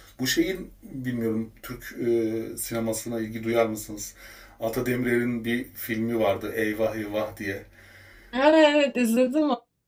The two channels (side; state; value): both; identical; correlation 1.00